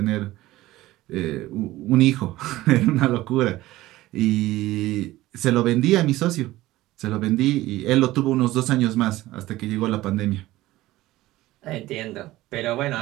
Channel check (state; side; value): quieter; left; 17.0 dB